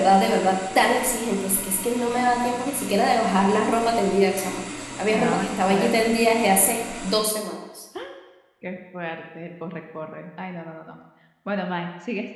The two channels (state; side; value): identical; both; correlation 1.00